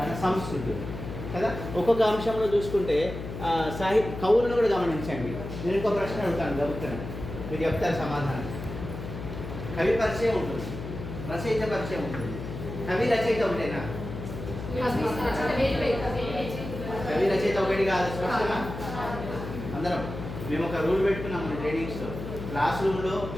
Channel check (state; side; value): noise; left; hum, 8 dB below the sound